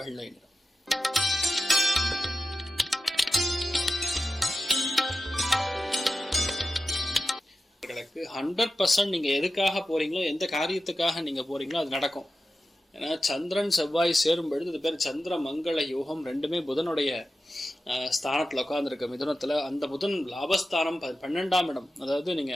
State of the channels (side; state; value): both; normal; correlation 0.92